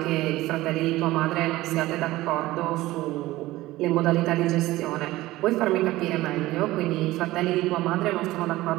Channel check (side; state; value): left; quieter; 17.5 dB